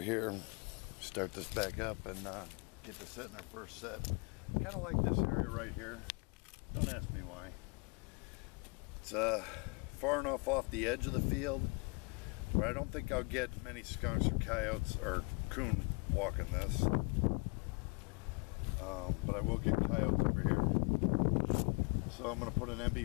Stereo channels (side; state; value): right; quieter; 31.9 dB